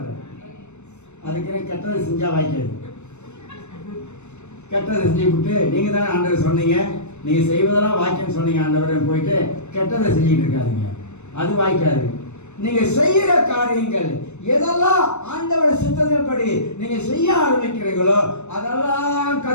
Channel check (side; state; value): right; late; 0.82 ms